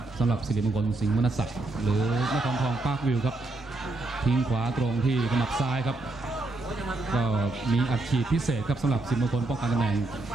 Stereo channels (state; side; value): quieter; left; 3.1 dB